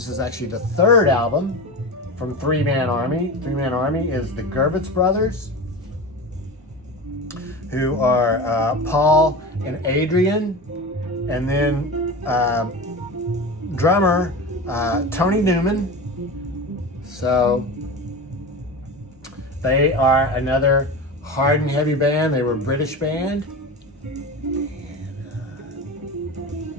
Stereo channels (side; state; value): both; normal; correlation 0.27